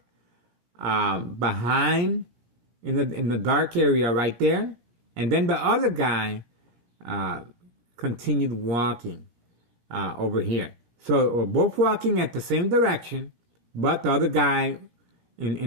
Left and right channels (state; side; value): late; left; 17 ms